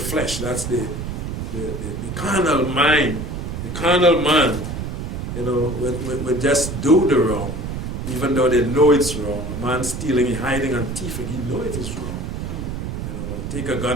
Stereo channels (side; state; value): right; noise; rumble, 5 dB below the sound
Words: that's the carnal mind, the carnal man, you know, would just do the wrong, even though they know it's wrong. A man stealing, hiding and thieving, he knows it is wrong. You know, take a